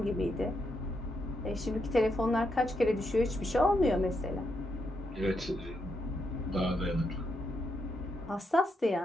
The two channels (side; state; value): both; normal; correlation 0.81